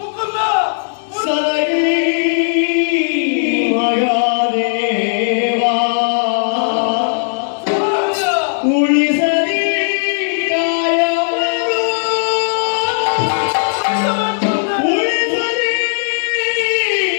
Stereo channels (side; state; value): right; silent; digital silence